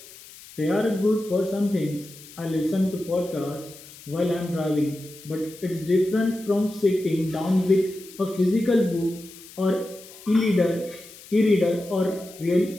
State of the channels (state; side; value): noise; left; hiss, 19 dB below the sound